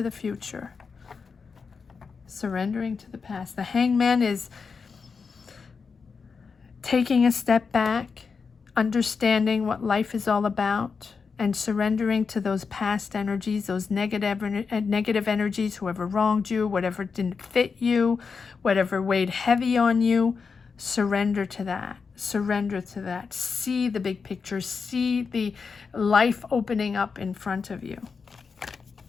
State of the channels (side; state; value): right; quieter; 5.3 dB